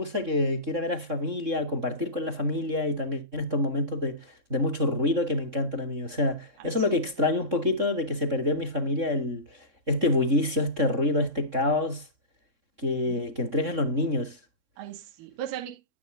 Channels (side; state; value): left; late; 3.6 ms